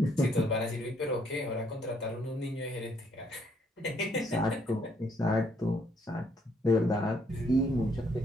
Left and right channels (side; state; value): both; normal; correlation 0.69